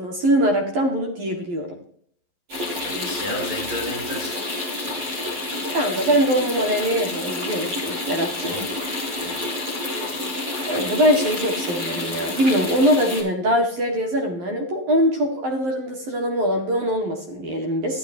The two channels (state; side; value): late; left; 11 ms